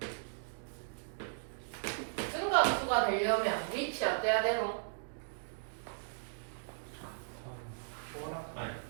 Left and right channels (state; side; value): silent; left; digital silence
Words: 증가 함수가 되려면 위치 어때야 되노?